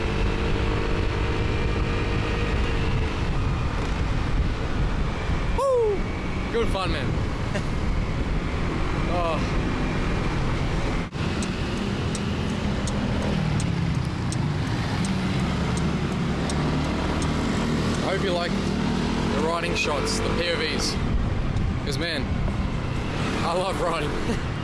Woo! Good fun, man. Oh. I hope you like the riding shots, the POVs. Because man, I love riding.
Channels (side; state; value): both; identical; correlation 1.00